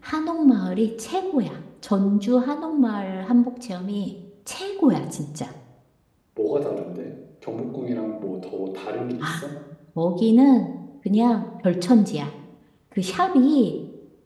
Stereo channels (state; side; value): identical; both; correlation 1.00